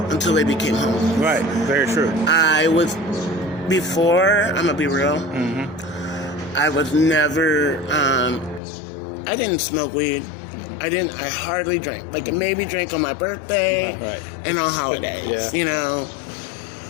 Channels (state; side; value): drops out; right; at 8.6 s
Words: until they became homeless. Right, very true. Before, I'm gonna be real, I was never, I didn't smoke weed. I hardly drank. Like, maybe drank on my birthday and on holidays, you know.